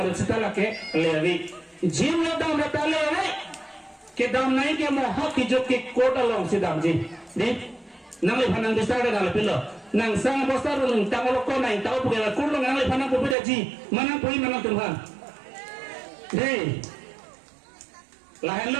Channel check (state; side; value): drops out; left; at 13.4 s